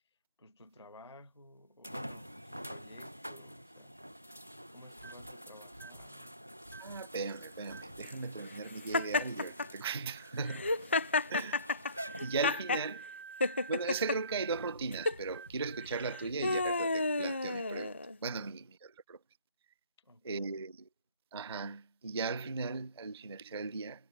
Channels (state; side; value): inverted; both; correlation -0.51